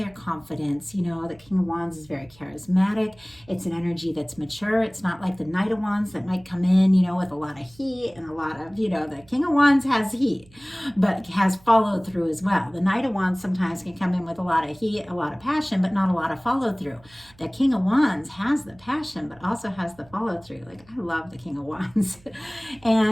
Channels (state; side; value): noise; right; hum, 27 dB below the sound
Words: confidence. You know, the King of Wands is very charismatic. It's an energy that's mature. It's not like the Knight of Wands that might come in, you know, with a lot of heat and a lot of, you know, the King of Wands has heat, but has follow through as well. The Knight of Wands sometimes can come in with a lot of heat, a lot of passion, but not a lot of follow through. The King of Wands has the passion, but also has the follow through. Like, I love the King of Wands.